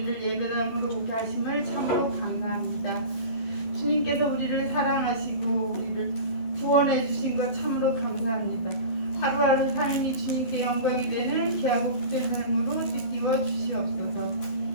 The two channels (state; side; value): late; right; 12 ms